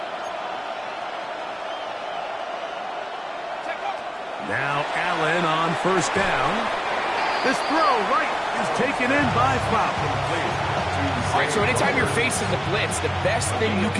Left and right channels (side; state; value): both; identical; correlation 1.00